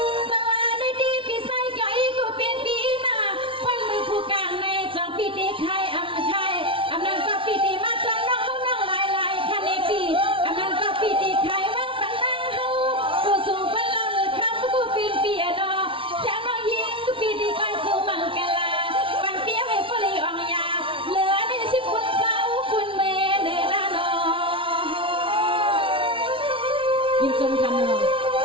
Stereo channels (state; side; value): late; left; 0.25 ms